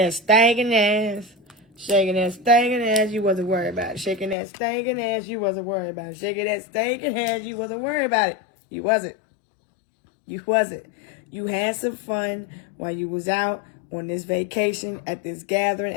stinking ass. Shaking that stinking ass. You wasn't worried about it. Shaking that stinking ass. You wasn't worried about it. Shaking that stinking ass. You wasn't worried about it. You wasn't. You wasn't. You had some fun while you was out on this vacation, at this gathering,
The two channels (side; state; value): right; drops out; at 4.4 s